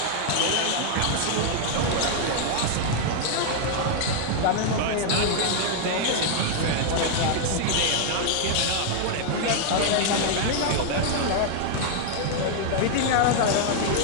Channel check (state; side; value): different; both; correlation 0.00